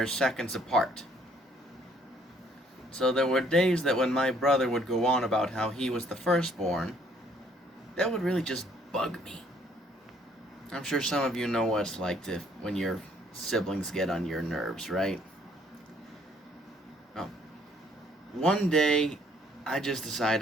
seconds apart. So there were days that when my brother would go on about how he was the firstborn, that would really just bug me. I'm sure some of you know what it's like to when your siblings get on your nerves, right? Oh, one day I just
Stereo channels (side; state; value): both; normal; correlation 0.63